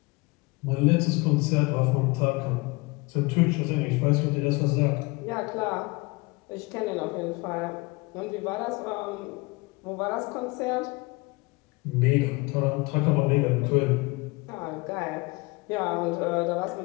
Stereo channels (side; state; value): right; quieter; 25.3 dB